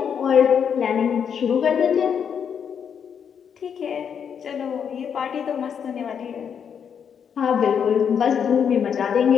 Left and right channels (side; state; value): right; quieter; 7.5 dB